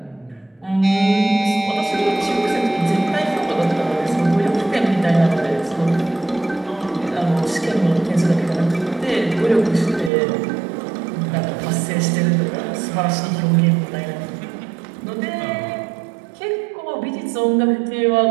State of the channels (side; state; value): left; drops out; at 10.1 s